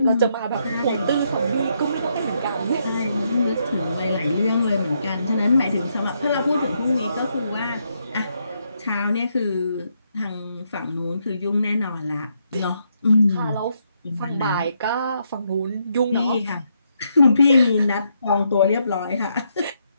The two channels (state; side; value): inverted; both; correlation -0.77